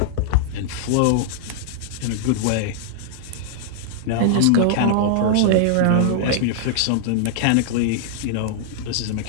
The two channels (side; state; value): both; different; correlation -0.01